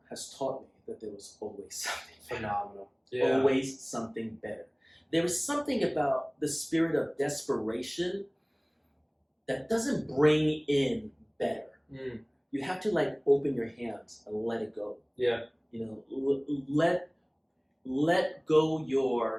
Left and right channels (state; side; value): identical; both; correlation 1.00